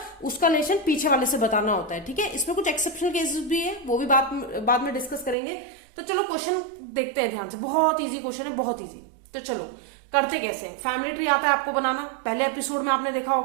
उसका रिलेशन पीछे वाले से बताना होता है, ठीक है। इसमें कुछ एक्सेप्शनल केसेस भी है, वो भी बाद में डिस्कस करेंगे। तो चलो क्वेश्चन देखते हैं ध्यान से। बहुत इजी क्वेश्चन है, बहुत इजी। तो चलो करते कैसे हैं। फैमिली ट्री आता है आपको बनाना, पहले एपिसोड में आपने देखा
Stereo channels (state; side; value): drops out; left; at 5.4 s